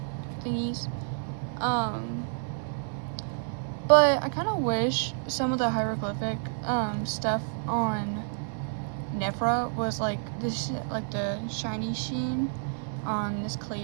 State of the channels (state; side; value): silent; left; digital silence